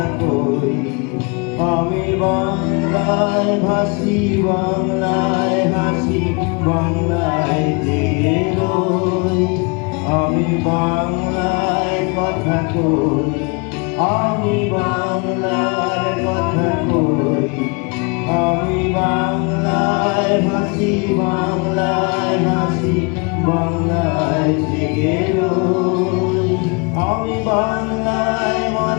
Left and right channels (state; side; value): quieter; right; 32.2 dB